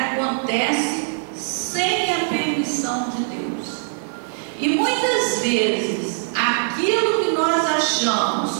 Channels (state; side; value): silent; left; digital silence